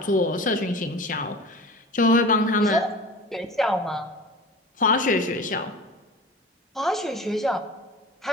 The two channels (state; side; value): normal; both; correlation 0.37